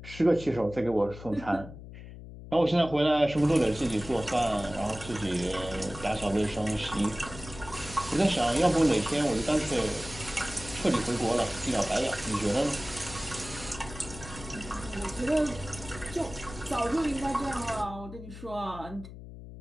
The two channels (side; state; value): left; noise; hum, 14 dB below the sound